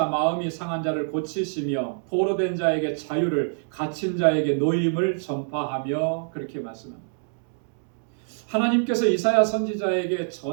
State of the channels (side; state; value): left; silent; digital silence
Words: 마음이 상한 자를 고치시며 포로된 자에게 자유를, 갇힌 자에게 노임을 전파하며, 그렇게 말씀합니다. 하나님께서 이사야 선지자에게